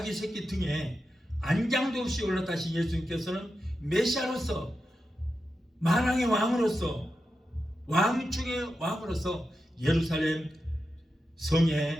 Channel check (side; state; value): both; normal; correlation 0.89